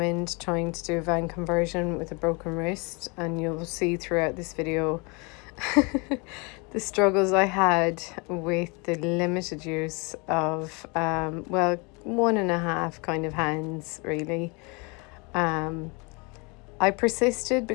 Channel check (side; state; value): right; quieter; 30.0 dB